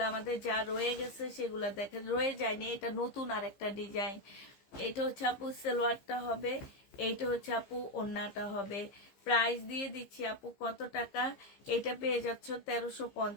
আমাদের যা রয়ে গেছে সেগুলো দেখে, রয়ে যায়নি, এটা নতুন আরেকটা ডিজাইন। এটা হচ্ছে আপু সালোয়ারটা হবে, এইটা হচ্ছে আপু ওড়নাটা হবে। প্রাইস দিয়ে দিচ্ছি আপু কত টাকা? এটা পেয়ে যাচ্ছ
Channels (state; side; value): late; right; 15 ms